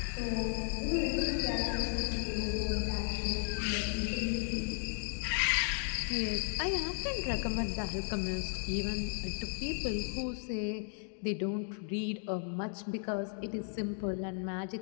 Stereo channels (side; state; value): right; silent; 54 dB below the other